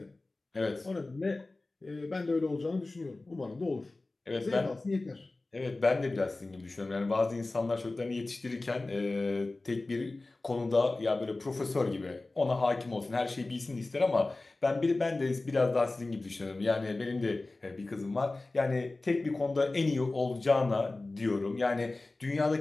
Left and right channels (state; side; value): quieter; right; 3.1 dB